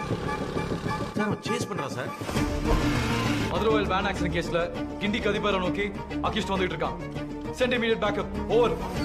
சேஸ் பண்றா சார். மதுரவாயல் வேன் ஆக்சிடென்ட் கேஸ்ல கிண்டி கதிபரை நோக்கி அகிஷ்ட் வந்துட்டு இருக்கான். Send immediate backup. ஓவர்.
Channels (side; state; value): both; identical; correlation 1.00